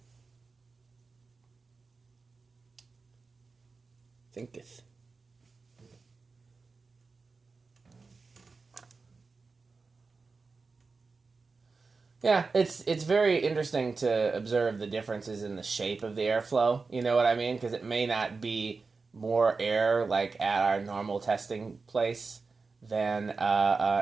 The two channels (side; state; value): left; quieter; 4.3 dB